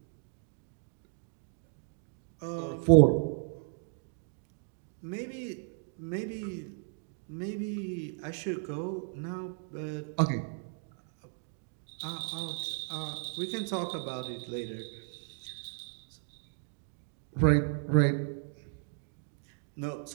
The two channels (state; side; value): silent; left; 55 dB below the other